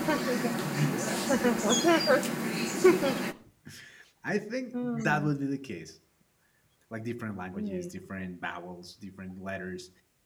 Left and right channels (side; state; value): both; identical; correlation 1.00